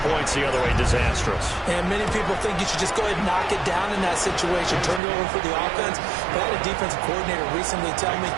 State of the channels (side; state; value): left; drops out; at 5.0 s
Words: points the other way. Disastrous. And many people think you should just go ahead and knock it down in that situation. Turn it over for the offense. But I had a defensive coordinator recently tell me,